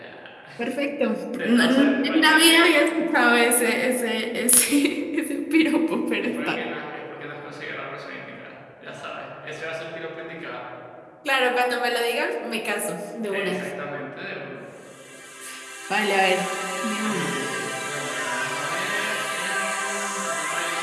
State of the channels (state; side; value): identical; both; correlation 1.00